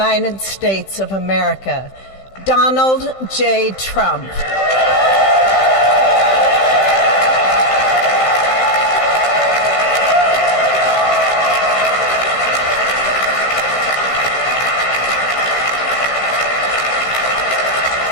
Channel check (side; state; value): right; late; 15 ms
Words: States of America, Donald J. Trump.